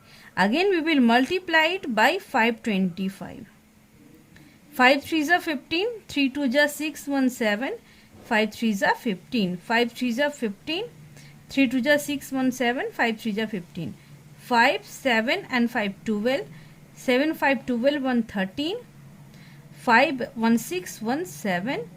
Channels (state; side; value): identical; both; correlation 1.00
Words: Again we will multiply it by 525. 5 3 is 15, 3 2 is 6 1 7, 5 3 is 15, 5 3 is 15, 3 2 is 6 1 7, 5 3 is 15, 5 7 and 5 12, 7 5 12 1 13, 5 1 6 1 7